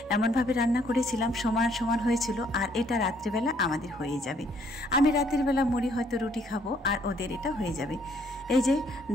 এমনভাবে রান্না করেছিলাম সমান সমান হয়েছিল, আর এটা রাত্রিবেলা আমাদের হয়ে যাবে। আমি রাতের বেলা মুড়ি হয়তো রুটি খাবো, আর ওদের এটা হয়ে যাবে। এই যে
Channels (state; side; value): normal; both; correlation 0.66